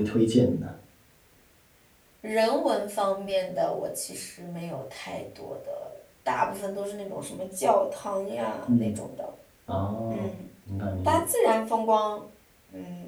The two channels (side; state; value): both; identical; correlation 1.00